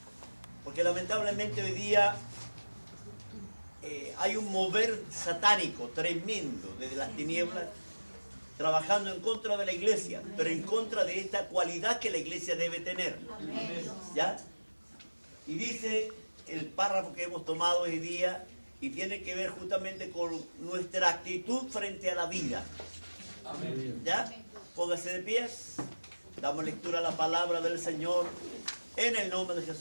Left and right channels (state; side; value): inverted; both; correlation -1.00